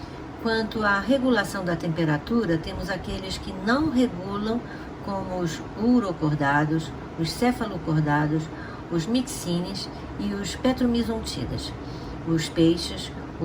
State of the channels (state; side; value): identical; both; correlation 1.00